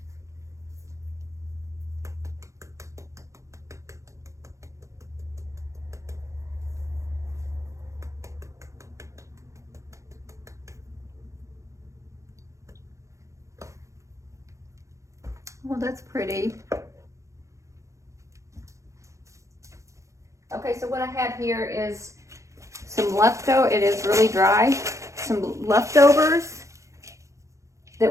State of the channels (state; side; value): late; left; 0.15 ms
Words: well, that's pretty. Okay, so what I have here is some leftover, it is really dry, some leftovers